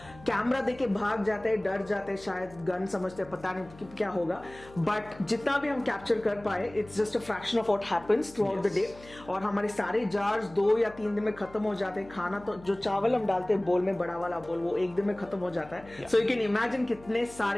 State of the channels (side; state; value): left; noise; hum, 21 dB below the sound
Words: कैमरा देके भाग जाते हैं, डर जाते हैं, शायद गन समझते हैं, पता नहीं क्या होगा. बट जितना भी हम कैप्चर कर पाए, it's just a fraction of what happens through out the day. और हमारे सारे जार्स 2 या 3 दिन में खत्म हो जाते हैं. खाना तो जो चावल हम डालते हैं बोल में, बड़ा वाला बोल, वो 1 दिन में खत्म हो जाता है. सो यू कैन इमेजिन कितने